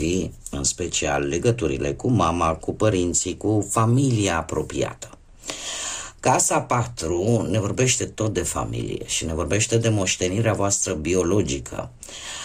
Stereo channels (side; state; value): both; identical; correlation 1.00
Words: în special legăturile cu mama, cu părinții, cu familia apropiată. Casa 4 ne vorbește tot de familie și ne vorbește de moștenirea voastră biologică.